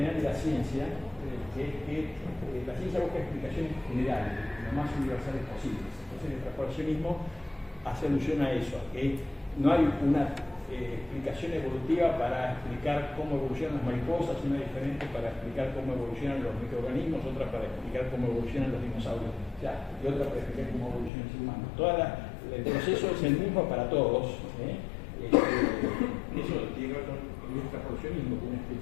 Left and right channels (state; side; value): drops out; right; at 21.1 s